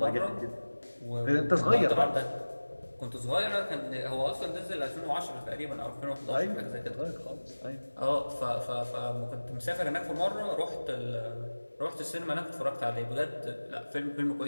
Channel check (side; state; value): both; inverted; correlation -1.00